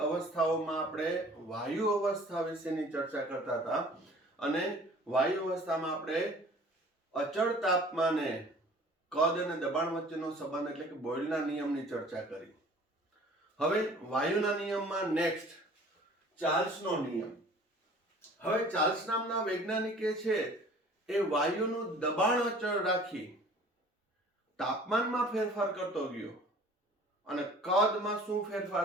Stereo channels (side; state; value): both; normal; correlation 0.49